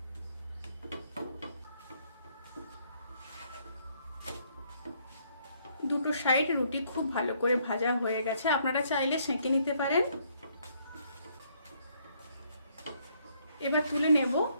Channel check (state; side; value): inverted; both; correlation -0.69